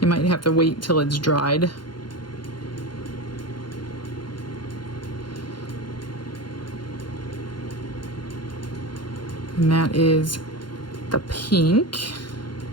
you might have to wait till it's dried. And that is the pink.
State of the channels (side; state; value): right; late; 0.71 ms